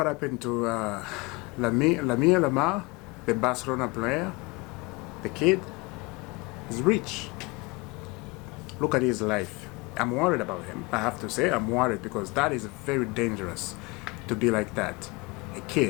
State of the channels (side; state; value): right; quieter; 26.0 dB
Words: happened to Lamine Yamal, the Barcelona player. The kid is rich. Look at his life. I'm worried about him. I have to say I'm worried because that is very dangerous to be like that. A